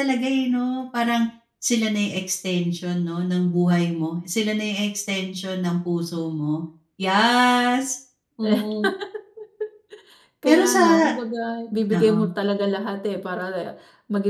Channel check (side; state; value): both; identical; correlation 1.00